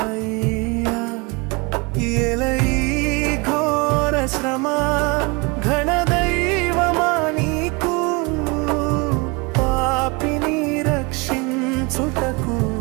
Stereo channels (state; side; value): quieter; left; 28.0 dB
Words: ఎలయి ఘోర శ్రమ ఘనదైవమా నీకు, పాపిని రక్షించుటకు